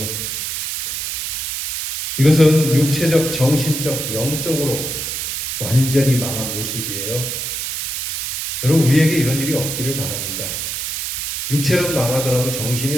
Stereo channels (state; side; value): noise; right; hiss, 3 dB below the sound